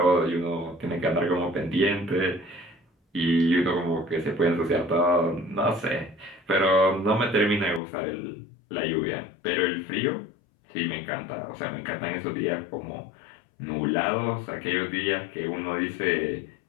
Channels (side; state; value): right; drops out; at 7.8 s